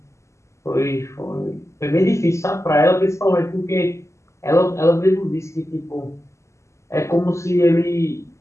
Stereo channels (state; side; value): late; right; 0.14 ms